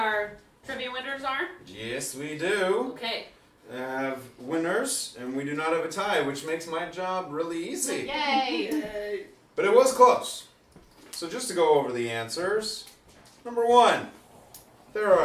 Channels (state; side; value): identical; both; correlation 1.00